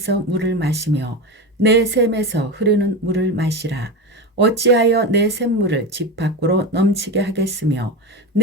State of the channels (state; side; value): normal; both; correlation 0.20